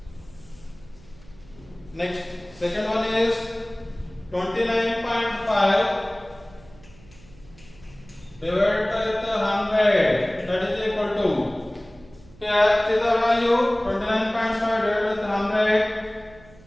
Next, second one is 29.5 divided by 100, that is equal to, here see the value 29.5 divided with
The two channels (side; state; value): right; noise; hum, 24 dB below the sound